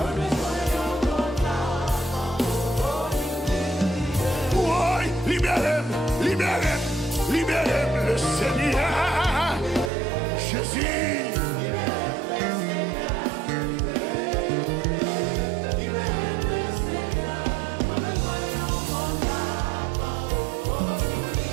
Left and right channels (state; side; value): drops out; left; at 9.9 s